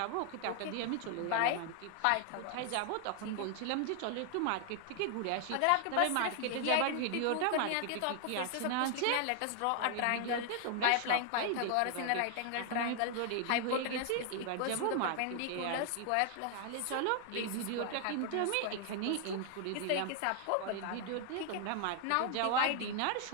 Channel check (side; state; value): both; different; correlation 0.00